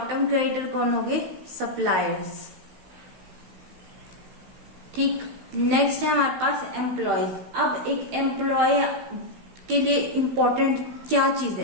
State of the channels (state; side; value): late; left; 16 ms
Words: टर्म क्रेडिटर कौन होंगे, सप्लायर्स। ठीक, नेक्स्ट है हमारे पास एम्प्लॉयज। अब एक एम्प्लॉय के लिए इम्पोर्टेंट क्या चीज